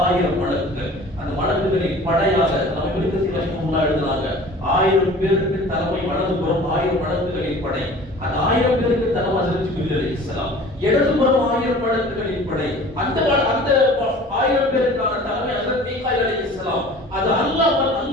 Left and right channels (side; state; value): both; normal; correlation 0.44